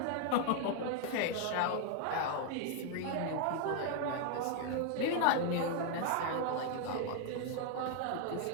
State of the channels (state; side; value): different; both; correlation 0.00